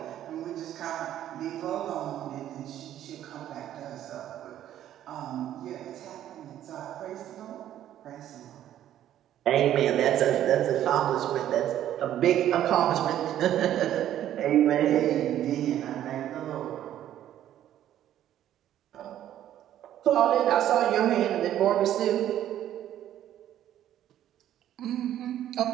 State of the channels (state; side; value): quieter; left; 11.7 dB